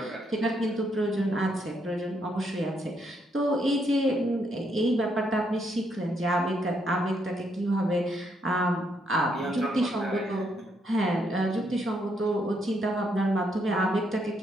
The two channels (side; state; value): both; normal; correlation 0.75